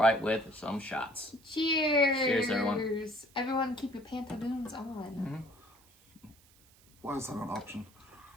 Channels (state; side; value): noise; right; hiss, 28 dB below the sound